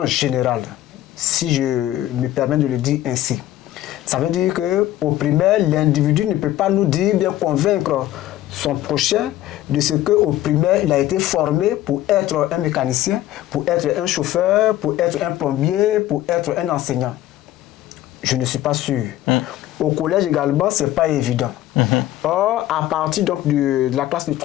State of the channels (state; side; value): quieter; right; 14.1 dB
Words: général, si je me permets de le dire ainsi. Ça veut dire qu'au primaire, l'individu ne peut pas nous dire, bien convaincre son prochain de ce qu'au primaire, il a été formé pour être un mécanicien, pour être un chauffeur, pour être un plombier, pour être un enseignant. Je ne suis pas sûr. Au collège également, ce n'est pas évident. Or, à partir donc, de la classe de